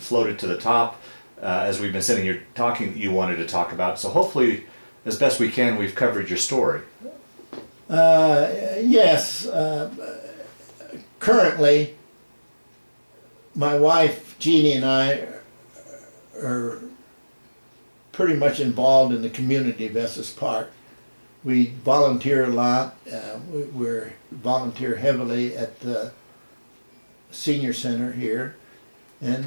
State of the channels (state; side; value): inverted; both; correlation -1.00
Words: to the top as we've been sitting here talking that you wanted to talk about? So hopefully, as best we can, we've covered your story. Yes. Currently, my wife, Jeanie, and I are pretty much involved in the community of Estes Park. We volunteer a lot. We volunteer heavily at the senior center here,